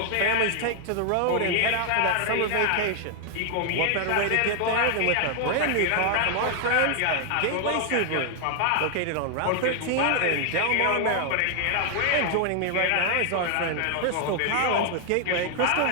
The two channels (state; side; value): different; both; correlation 0.00